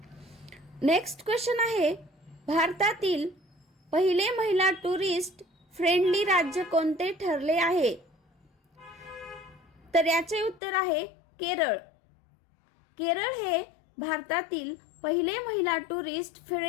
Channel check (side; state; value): right; drops out; at 10.6 s